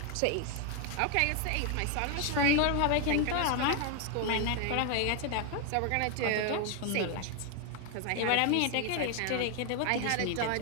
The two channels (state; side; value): different; both; correlation 0.01